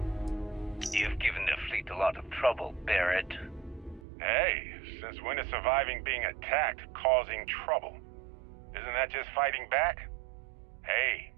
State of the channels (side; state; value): left; drops out; at 4.0 s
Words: You've given the fleet a lot of trouble, Barrett. Hey, since when is surviving being attacked causing trouble? Isn't that just fighting back? Hey,